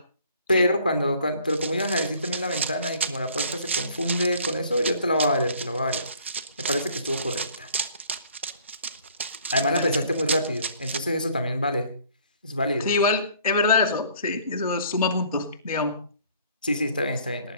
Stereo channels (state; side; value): inverted; both; correlation -0.57